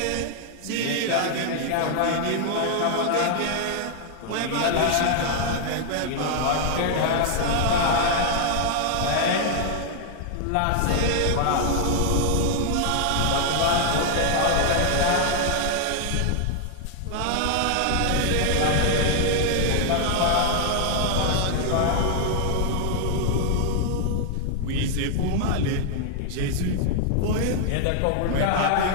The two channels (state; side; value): different; both; correlation 0.00